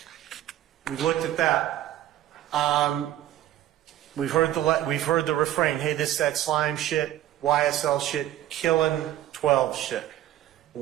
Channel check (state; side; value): quieter; left; 13.1 dB